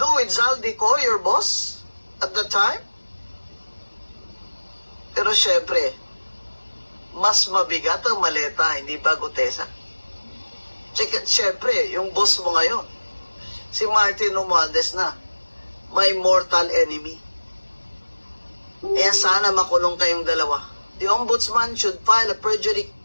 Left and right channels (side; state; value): both; inverted; correlation -1.00